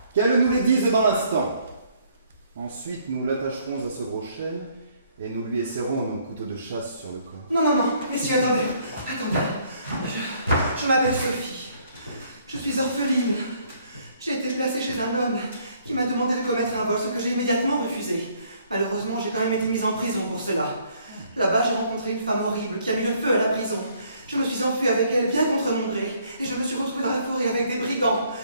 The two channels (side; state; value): both; inverted; correlation -0.65